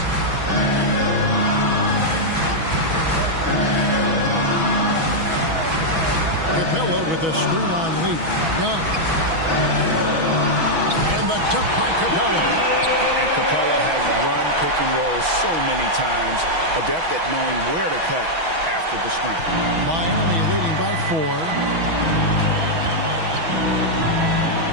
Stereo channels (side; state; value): left; late; 6.2 ms